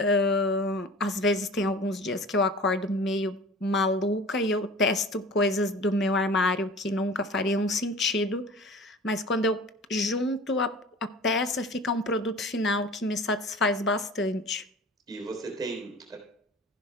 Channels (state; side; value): normal; both; correlation 0.40